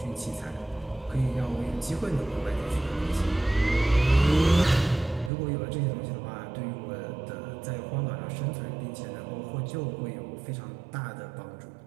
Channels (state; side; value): drops out; left; at 5.3 s